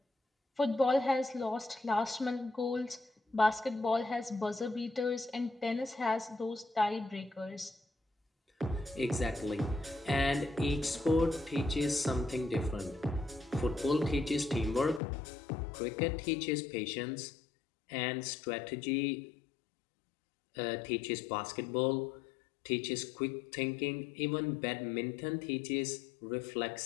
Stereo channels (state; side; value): drops out; right; at 15.0 s